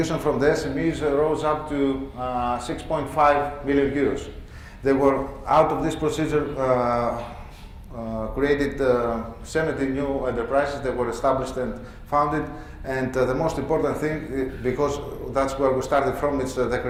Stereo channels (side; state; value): both; identical; correlation 1.00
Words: from the SMEs rose up to 6.5 million euros. They were, out of this procedure, created 70 new enterprises that were established and founded. And the most important thing, because that's where we started from, is the